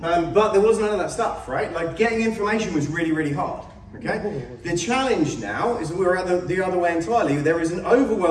But there was none of that stuff, right? Like getting information was really, really hard, okay? The challenge now is that we're at the other way entirely. There is an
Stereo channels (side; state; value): both; identical; correlation 1.00